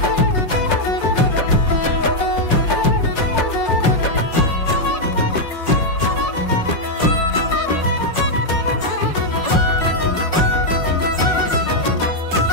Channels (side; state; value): right; late; 5.6 ms